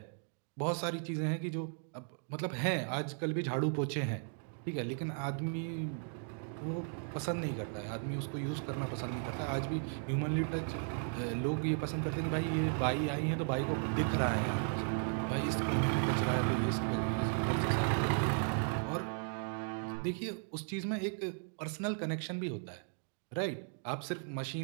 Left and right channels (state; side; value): silent; left; 54 dB below the other